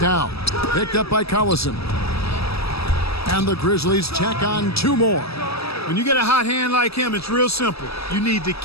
Picked up by Collison. And the Grizzlies check on two more. When you get a hot hand like him, it's real simple. You need to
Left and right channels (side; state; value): right; late; 0.77 ms